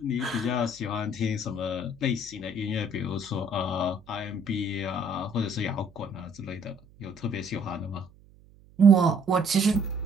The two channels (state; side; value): noise; right; hum, 26 dB below the sound